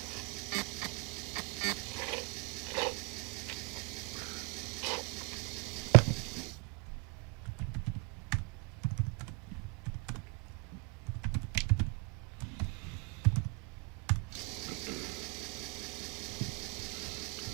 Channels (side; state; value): left; quieter; 32.4 dB